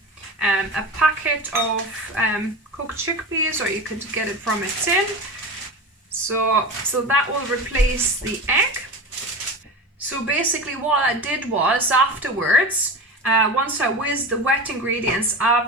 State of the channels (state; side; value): normal; both; correlation 0.28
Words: a packet of cooked chickpeas, or you could get it from a tin. So that will replace the egg. So basically what I did was afterwards, once I whizzed the wet ingredients,